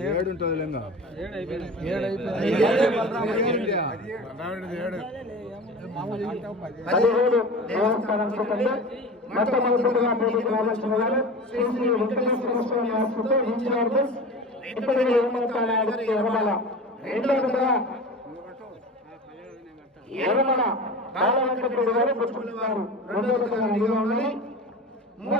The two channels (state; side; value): normal; both; correlation 0.33